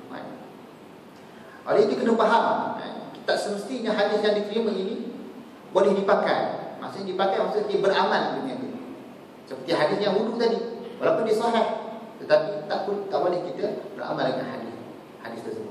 Oleh itu kena faham, tak semestinya hadis yang diterima ini boleh dipakai. Maksudnya dipakai maksudnya beramal dengan dia. Seperti hadis yang wudu tadi, walaupun dia sahih, tetapi tak boleh kita beramal dengan hadis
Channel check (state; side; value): identical; both; correlation 1.00